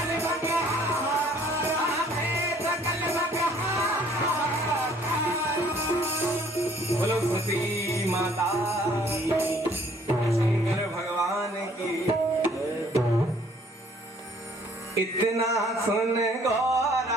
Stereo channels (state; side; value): normal; both; correlation 0.59